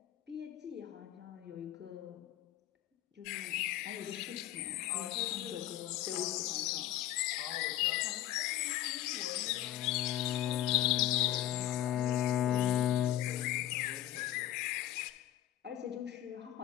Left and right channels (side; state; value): right; quieter; 13.2 dB